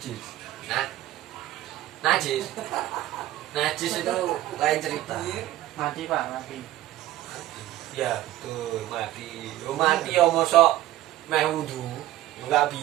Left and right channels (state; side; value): quieter; left; 14.9 dB